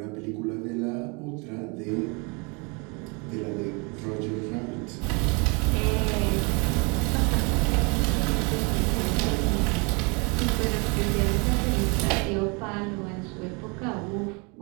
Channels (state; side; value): quieter; left; 31.4 dB